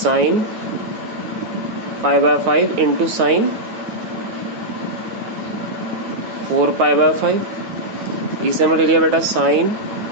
pi by 5 into sine 4 pi by 5। इसे हमने ले लिया बेटा sine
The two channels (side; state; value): left; late; 9.4 ms